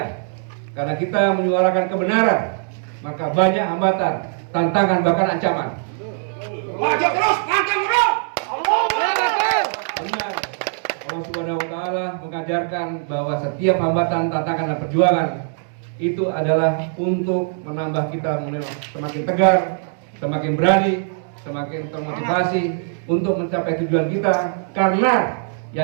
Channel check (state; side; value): silent; left; digital silence